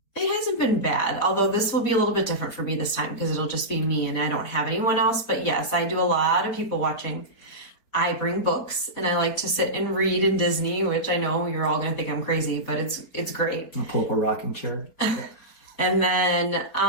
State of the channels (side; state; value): right; late; 4.3 ms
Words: It hasn't been bad, although this will be a little bit different for me this time because it'll just be me and I don't have anyone else. But yes, I do a lot of people watching. I bring books and I like to sit and read in Disney, which I know you're all going to think I'm crazy, but it's great. I'll pull up a rocking chair. And